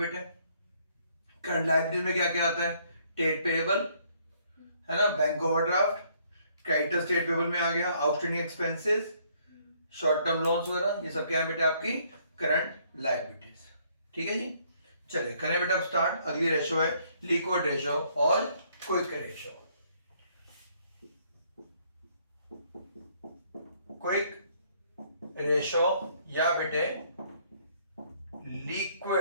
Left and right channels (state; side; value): inverted; both; correlation -0.66